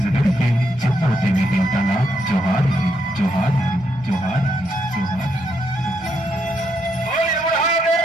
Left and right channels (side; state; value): both; normal; correlation 0.78